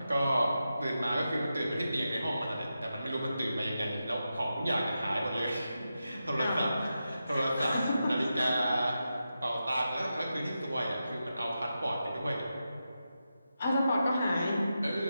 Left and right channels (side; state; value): both; inverted; correlation -0.89